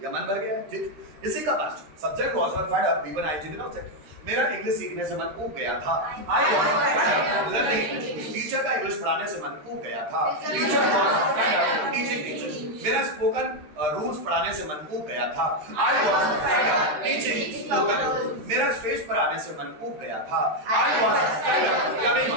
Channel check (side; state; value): left; late; 13 ms